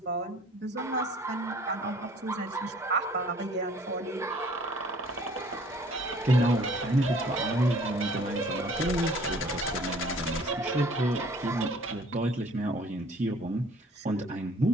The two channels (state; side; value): normal; both; correlation 0.54